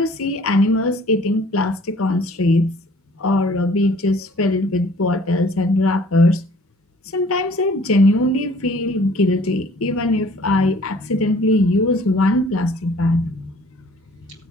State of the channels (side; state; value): both; normal; correlation 0.54